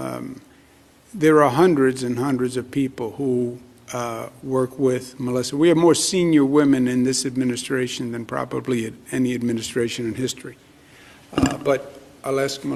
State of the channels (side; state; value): both; identical; correlation 1.00